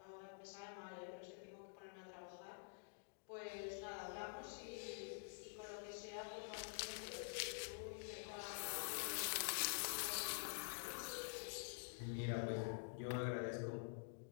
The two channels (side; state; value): right; silent; digital silence